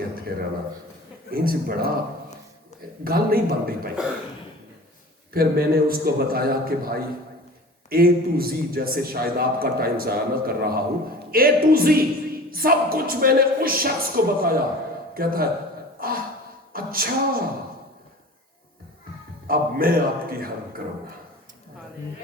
اتھے رہنا انج بڑا گل نہیں بن رہی پائی. پھر میں نے اس کو بتایا کہ بھائی A to Z, جیسے شاید آپ کا ٹائم ضائع نہ کر رہا ہوں, A to Z سب کچھ میں نے اس شخص کو بتایا. کہتا ہے اچھا اب میں آپ کی ہیلپ کروں گا.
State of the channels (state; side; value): normal; both; correlation 0.40